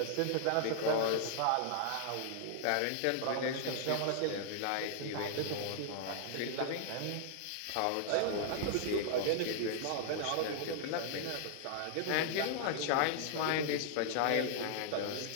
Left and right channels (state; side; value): different; both; correlation -0.01